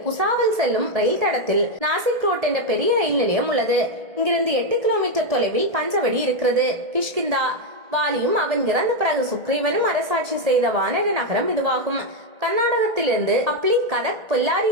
புசாவல் செல்லும் ரயில் தடத்தில் நாசிக் ரோட் என்ற பெரிய ரயில் நிலையம் உள்ளது. இங்கிருந்து 8 கிலோமீட்டர் தொலைவில் பஞ்சவடி இருக்கிறது. கிஷ்கிந்தா. வாலியும் அவன் இறந்த பிறகு சுக்ரீவனும் அரசாட்சி செய்த வானர நகரம் இதுவாகும். கர்நாடகத்திலிருந்து ஹப்ளி, கதக், பொல்லாரி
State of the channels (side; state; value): left; late; 1.7 ms